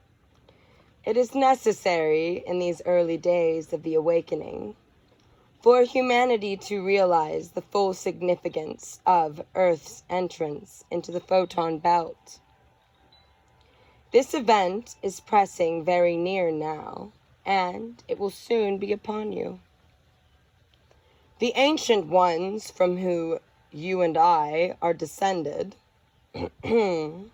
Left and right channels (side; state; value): both; identical; correlation 1.00